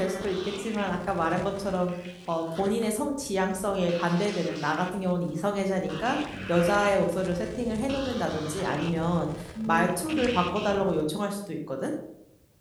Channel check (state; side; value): identical; both; correlation 1.00